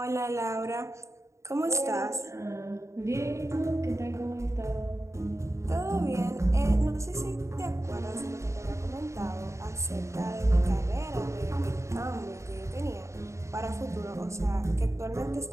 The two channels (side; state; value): left; late; 0.14 ms